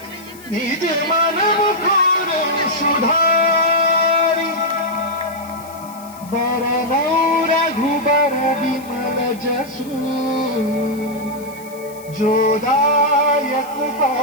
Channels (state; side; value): noise; left; hiss, 21 dB below the sound